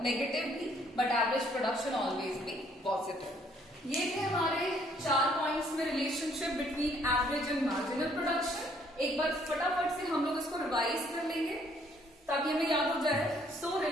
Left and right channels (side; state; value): both; normal; correlation 0.64